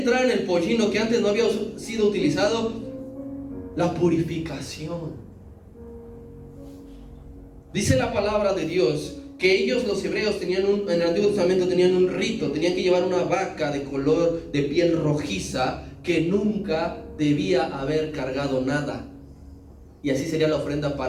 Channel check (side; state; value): both; identical; correlation 1.00